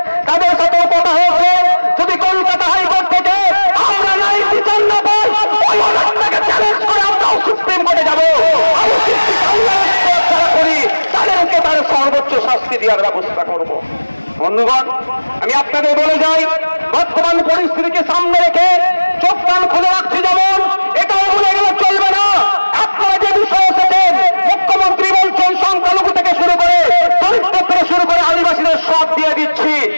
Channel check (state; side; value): inverted; both; correlation -1.00